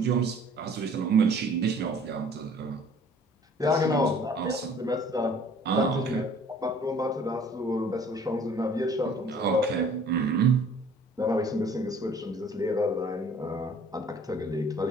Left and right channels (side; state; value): both; normal; correlation 0.53